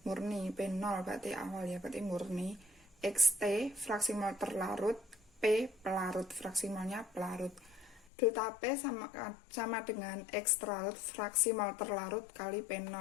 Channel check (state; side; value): drops out; right; at 8.1 s